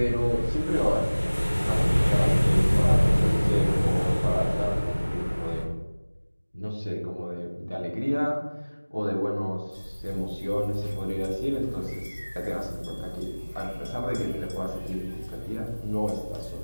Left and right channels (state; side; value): inverted; both; correlation -1.00